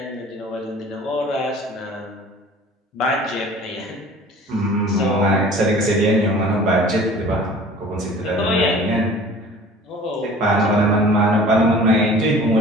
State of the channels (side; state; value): both; normal; correlation 0.46